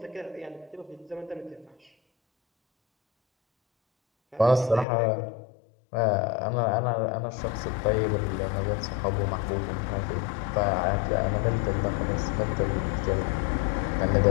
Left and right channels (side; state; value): right; drops out; at 4.9 s